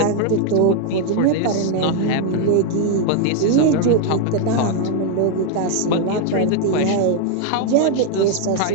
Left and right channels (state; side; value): different; both; correlation 0.01